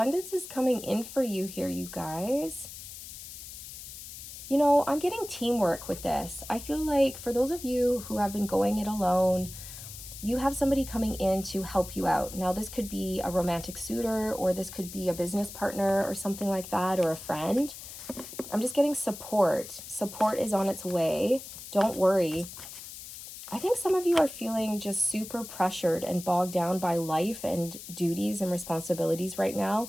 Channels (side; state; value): left; noise; hiss, 12 dB below the sound